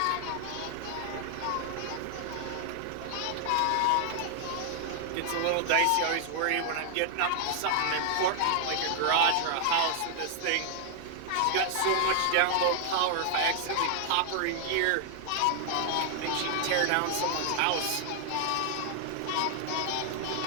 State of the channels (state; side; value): different; both; correlation 0.00